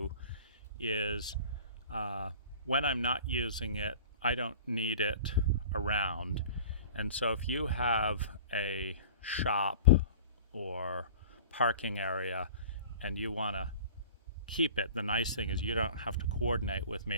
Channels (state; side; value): inverted; both; correlation -0.42